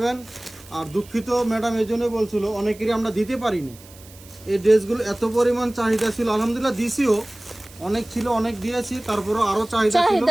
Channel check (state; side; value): noise; right; hiss, 22 dB below the sound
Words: আর দুঃখিত ম্যাডাম এই জন্য বলছিল, অনেকেরই আমরা দিতে পারিনি। এই ড্রেসগুলো এত পরিমাণ চাহিদা ছিল, আলহামদুলিল্লাহ দিছিও, অনেক ছিল, অনেক দিয়েছি, তারপরে আরো চাহিদা ছিল,